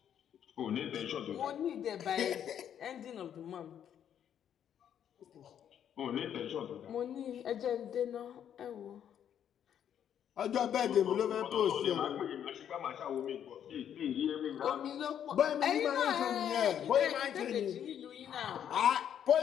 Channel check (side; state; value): right; quieter; 9.4 dB